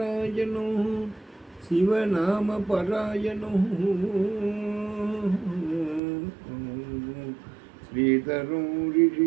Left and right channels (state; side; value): drops out; left; at 6.0 s